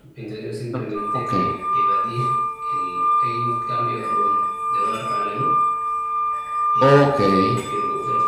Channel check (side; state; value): both; identical; correlation 1.00